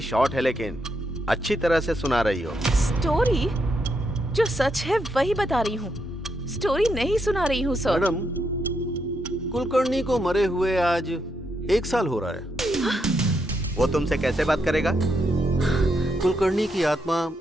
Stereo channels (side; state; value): both; normal; correlation 0.80